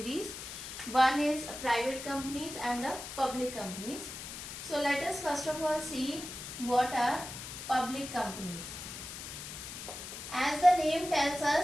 One is private companies and the public companies. So let us first of all see what are public companies. As the name tells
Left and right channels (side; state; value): left; noise; hiss, 9 dB below the sound